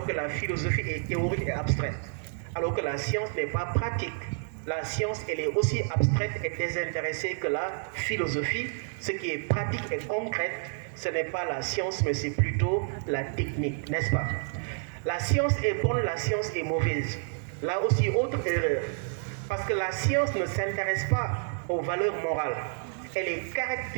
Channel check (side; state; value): left; silent; digital silence